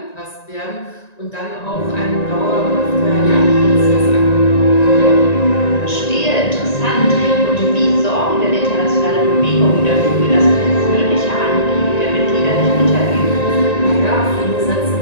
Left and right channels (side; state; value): right; late; 1.9 ms